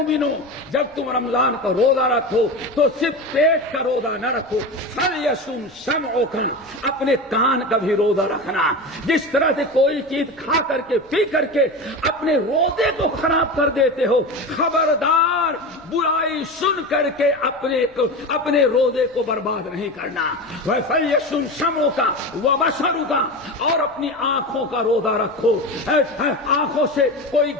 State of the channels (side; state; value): left; noise; rumble, 30 dB below the sound